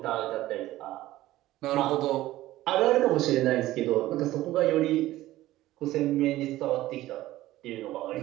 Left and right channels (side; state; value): left; quieter; 15.8 dB